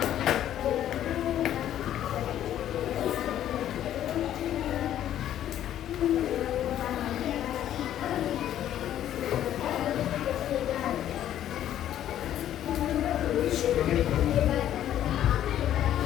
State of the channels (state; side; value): quieter; right; 11.5 dB